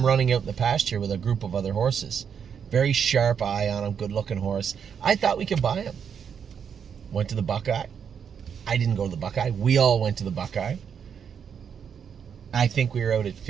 running out in the pasture with a group of other horses. Very sharp eye on him, good-looking horse. I thought we could buy him. Went to the Buckeye. I didn't go to the Buckeye. We all went to the Buckeye. I think we were out at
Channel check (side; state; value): left; quieter; 7.4 dB